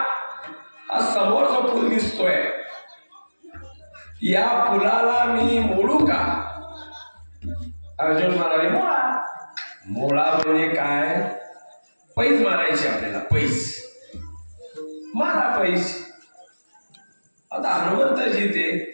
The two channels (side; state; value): both; inverted; correlation -1.00